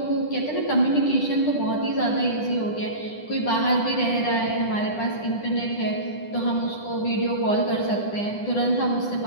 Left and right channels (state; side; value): late; right; 9.9 ms